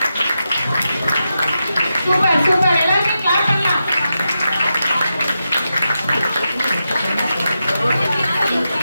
சூப்பர் சூப்பர், எல்லாருமே கிளாப் பண்ணலாம்.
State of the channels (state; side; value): inverted; both; correlation -0.88